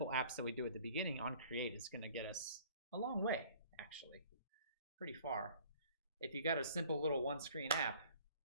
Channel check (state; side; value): inverted; both; correlation -0.53